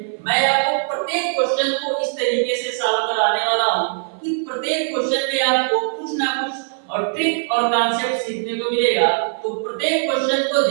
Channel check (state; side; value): silent; left; 57 dB below the other